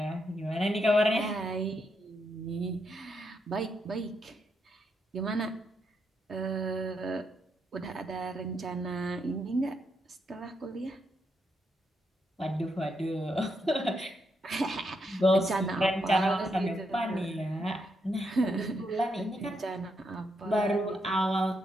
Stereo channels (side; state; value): both; normal; correlation 0.80